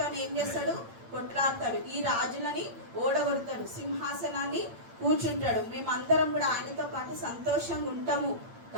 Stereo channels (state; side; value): late; left; 8.8 ms